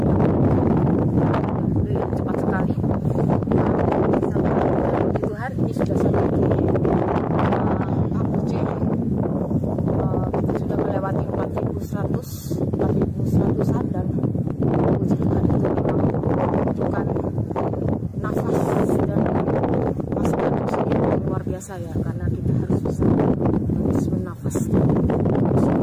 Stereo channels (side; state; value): both; identical; correlation 1.00